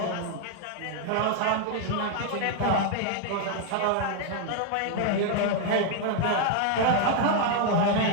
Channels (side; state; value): both; different; correlation 0.00